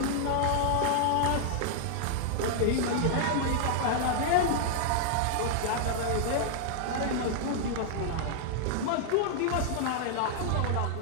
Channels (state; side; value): different; both; correlation -0.01